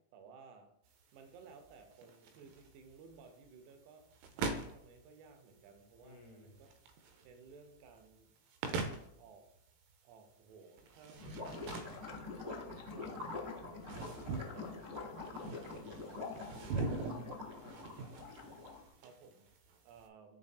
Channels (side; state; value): left; late; 18 ms